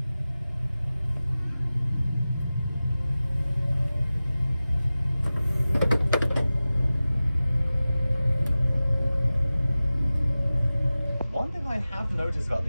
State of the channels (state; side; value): inverted; both; correlation -0.96